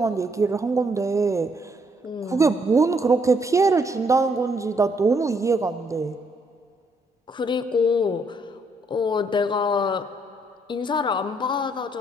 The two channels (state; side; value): normal; both; correlation 0.71